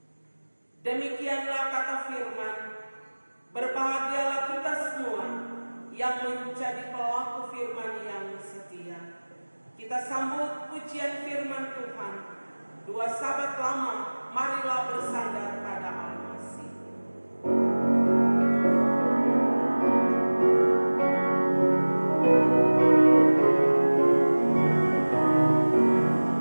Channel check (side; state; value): both; inverted; correlation -1.00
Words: Demikianlah kata firman, berbahagialah kita semua yang menjadi pelaku firman yang setia. Kita sambut pujian firman Tuhan. Dua sahabat lama, marilah bersandar pada Al-Masih.